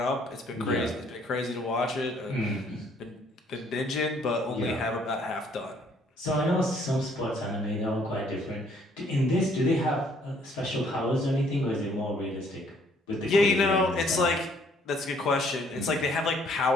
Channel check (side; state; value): both; normal; correlation 0.63